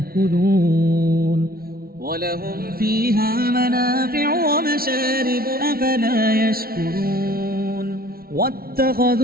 ولهم فيها منافع ومشارب أفلا يشكرون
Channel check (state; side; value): late; left; 0.44 ms